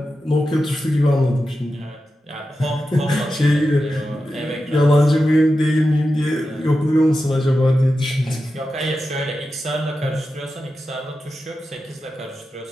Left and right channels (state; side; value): normal; both; correlation 0.91